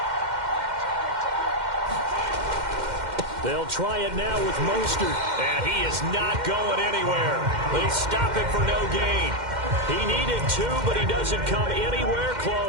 They'll try it now with Mostert. And he is not going anywhere. They stop him for no gain. He needed 2, but he doesn't come anywhere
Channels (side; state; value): left; late; 2.1 ms